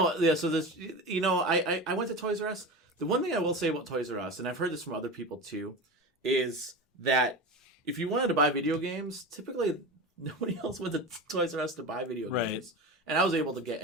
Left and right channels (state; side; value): normal; both; correlation 0.27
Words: this, I went to Toys R Us. The one thing I will say about Toys R Us, and I've heard this from other people too, is that if you wanted to buy video games, typically nobody else went to Toys R Us to buy video Right. games. And I was able to get